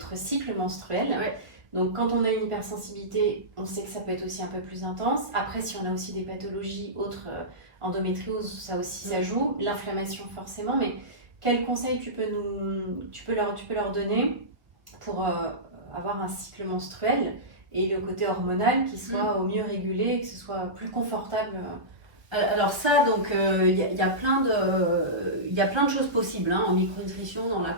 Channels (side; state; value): left; late; 1.1 ms